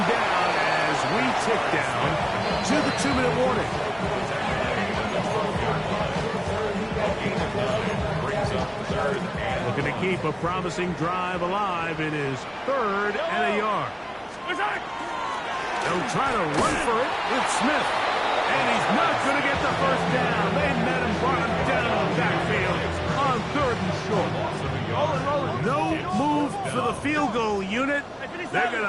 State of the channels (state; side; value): identical; both; correlation 1.00